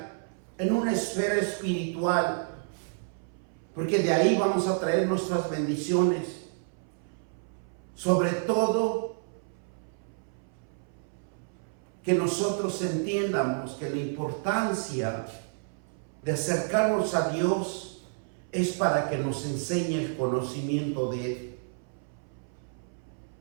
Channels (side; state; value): left; silent; 58 dB below the other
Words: en una esfera espiritual, porque de ahí vamos a traer nuestras bendiciones. Sobre todo, que nosotros entiendamos que la importancia de acercarnos a Dios es para que nos enseñe el conocimiento de Él.